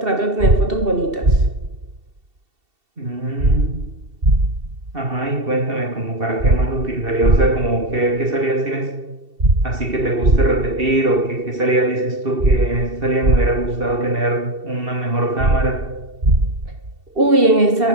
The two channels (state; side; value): late; left; 2.7 ms